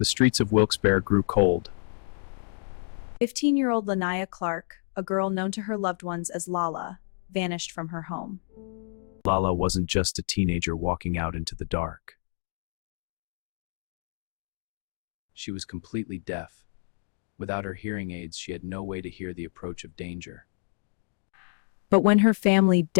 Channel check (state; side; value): silent; right; digital silence